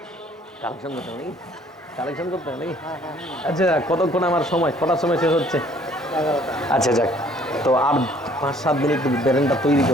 কালেকশন করতে হবে নাকি? আচ্ছা, কতক্ষণ আমার সময়, কটার সময় শেষ হচ্ছে? আচ্ছা যাক, তো আর 5-7 মিনিট ব্রেনটা তৈরি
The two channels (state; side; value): normal; both; correlation 0.59